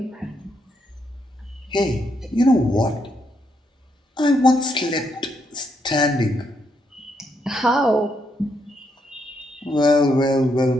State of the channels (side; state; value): both; normal; correlation 0.77